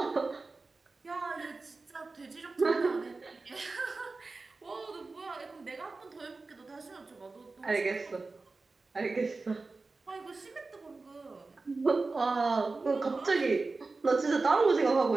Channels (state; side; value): quieter; left; 3.7 dB